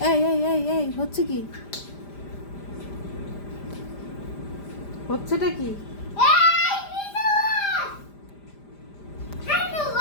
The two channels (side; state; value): right; late; 5.0 ms